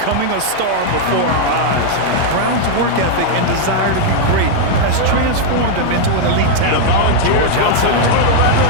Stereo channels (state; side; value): different; both; correlation 0.00